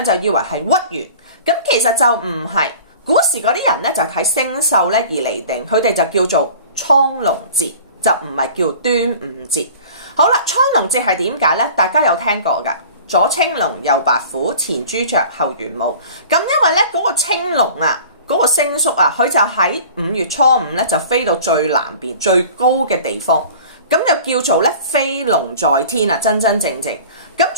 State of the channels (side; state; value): both; inverted; correlation -0.43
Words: 就以為係屈原，咁其實就唔係。古時嗰啲人咧就睇星宿咧而嚟定，佢哋就叫做蒼龍節，就唔係叫端午節。好啦，蒼龍節係點解呢？大家有聽過噶？左青龍，右白虎，前朱雀，後玄武。咁因為咧嗰個青龍啊，嗰個星宿啊，佢就喺5月初5咧就飛到最南邊最高嘅地方，咁就叫做咧飛龍在天啊，真真正正。咁